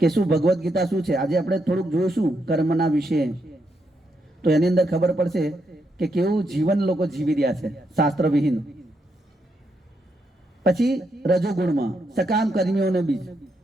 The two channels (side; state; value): both; normal; correlation 0.80